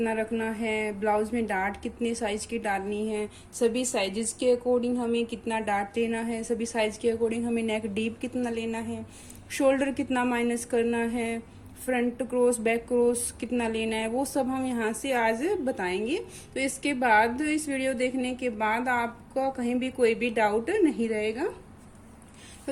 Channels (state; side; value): identical; both; correlation 1.00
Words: रखना है, ब्लाउज में डार्ट कितने साइज की डालनी है, सभी साइजेस के अकॉर्डिंग हमें कितना डार्ट लेना है, सभी साइज के अकॉर्डिंग हमें नेक डीप कितना लेना है, शोल्डर कितना माइनस करना है, फ्रंट क्रॉस बैक क्रॉस कितना लेना है, वो सब हम यहाँ से आज बताएंगे। तो इसके बाद इस वीडियो देखने के बाद आपका कहीं भी कोई भी डाउट नहीं रहेगा।